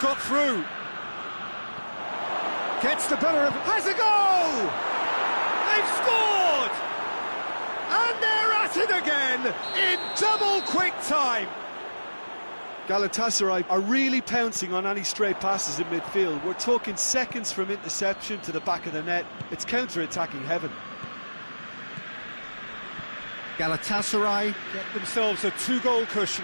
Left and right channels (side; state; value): both; inverted; correlation -1.00